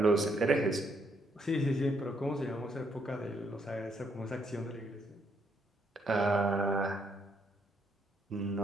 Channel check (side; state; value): both; normal; correlation 0.73